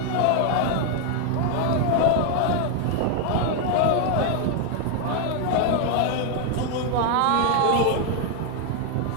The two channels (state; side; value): different; both; correlation 0.01